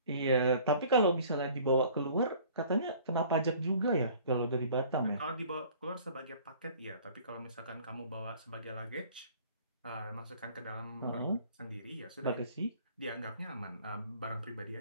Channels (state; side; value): inverted; both; correlation -0.51